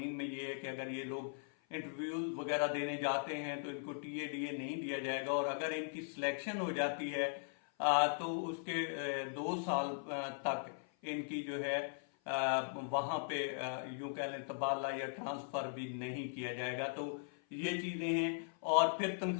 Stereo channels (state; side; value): silent; right; 52 dB below the other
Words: में ये है कि अगर ये लोग इंटरव्यूज वगैरह देने जाते हैं तो इनको टीए नहीं दिया जाएगा, और अगर इनकी सिलेक्शन हो जाती है तो उसके 2 साल तक इनकी जो है वहां पे यूं कह लें तबादला या ट्रांसफर भी नहीं किया जाएगा। तो ये चीजें हैं। और फिर